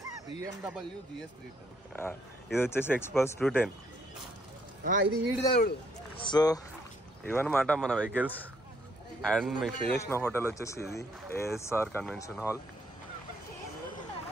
ఇది వచ్చేసి ఎక్స్పల్స్ 210. సో ఇవన్నమాట మన వెహికల్స్. అండ్ మీకు స్టే చేసిన హోటల్ వచ్చేసి ఇది ASR కన్వెన్షన్ హాల్.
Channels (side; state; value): both; normal; correlation 0.69